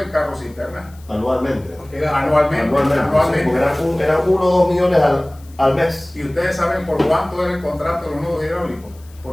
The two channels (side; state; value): left; noise; hiss, 27 dB below the sound